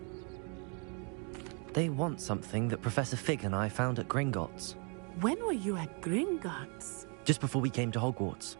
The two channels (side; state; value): left; quieter; 36.7 dB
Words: They want something that Professor Fig and I found at Gringotts. When were you at Gringotts? Just before we came to Hogwarts.